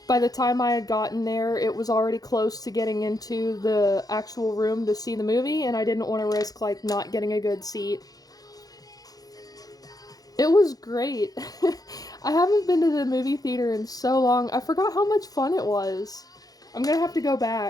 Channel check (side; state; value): right; late; 0.18 ms